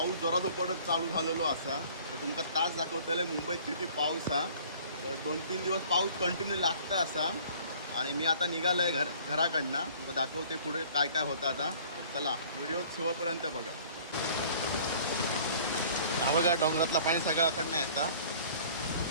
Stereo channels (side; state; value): both; inverted; correlation -0.51